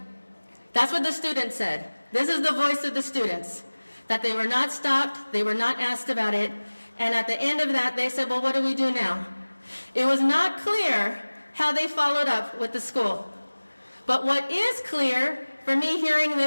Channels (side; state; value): both; inverted; correlation -1.00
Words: That's what the students said. This is the voice of the students, that they were not stopped, they were not asked about it, and at the end of that, they said, well, what do we do now? It was not clear how they followed up with the school. But what is clear for me hearing